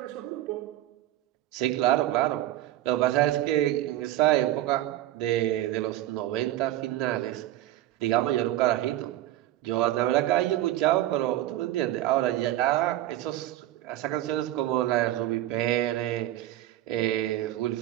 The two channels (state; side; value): quieter; left; 14.3 dB